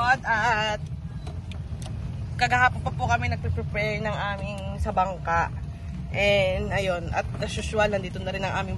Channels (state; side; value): identical; both; correlation 1.00